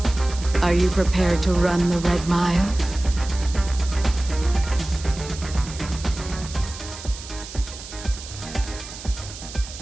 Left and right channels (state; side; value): noise; right; hiss, 13 dB below the sound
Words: Are you prepared to run the Red Mile?